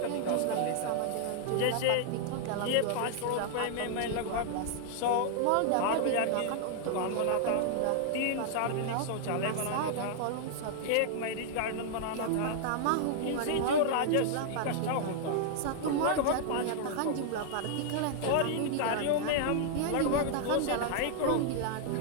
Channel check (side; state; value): both; different; correlation -0.01